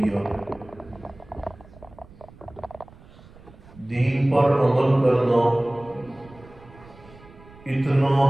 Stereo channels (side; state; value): right; noise; rumble, 23 dB below the sound